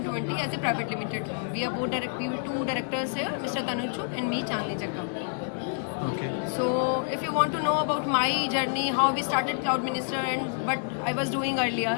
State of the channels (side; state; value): right; silent; digital silence